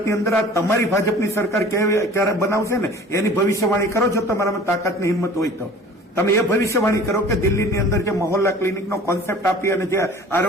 અંદર આ તમારી ભાજપની સરકાર ક્યારે બનાવશે ને એની ભવિષ્યવાણી કરો છો તમારામાં તાકાતની હિંમત હોય તો. તમે એ ભવિષ્યવાણી કરો કે દિલ્હીની અંદર જે મહોલ્લા ક્લિનિકનો કોન્સેપ્ટ આપી અને જે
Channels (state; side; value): normal; both; correlation 0.45